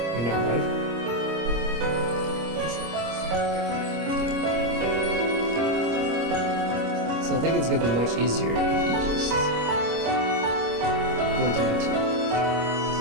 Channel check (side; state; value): left; late; 25 ms